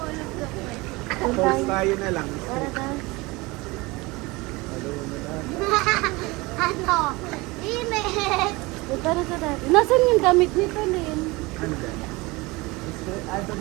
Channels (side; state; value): left; quieter; 23.3 dB